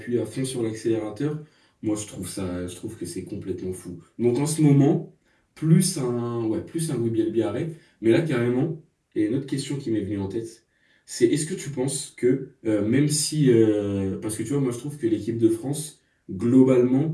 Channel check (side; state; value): both; identical; correlation 1.00